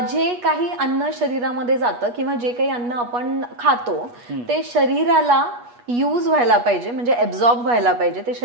जे काही अन्न शरीरामध्ये जातं किंवा जे काही अन्न आपण खातो ते शरीराला यूज व्हायला पाहिजे, म्हणजे ऍब्झॉर्ब व्हायला पाहिजे, ते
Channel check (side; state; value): left; late; 8.3 ms